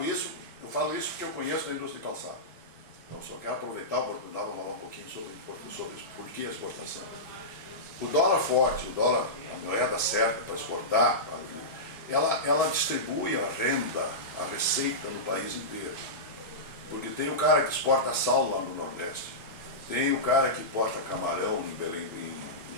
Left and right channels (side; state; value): both; normal; correlation -0.15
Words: isso porque eu conheço a indústria de calçado. Então, só quero aproveitar a oportunidade para falar um pouquinho sobre por que a exportação. O dólar forte, a moeda certa para exportar, ela distribui a renda, a receita no país inteiro. Porque tem o cara que exporta sal lá no Nordeste, tem o cara que exporta camarão